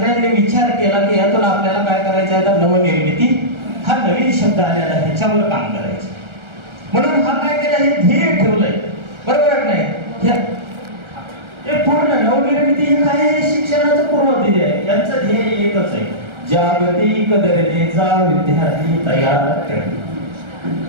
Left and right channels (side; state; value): left; late; 1.4 ms